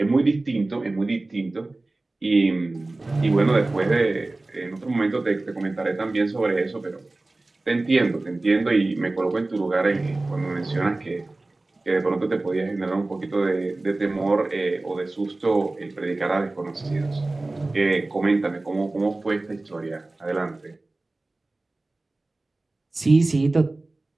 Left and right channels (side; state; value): left; quieter; 3.0 dB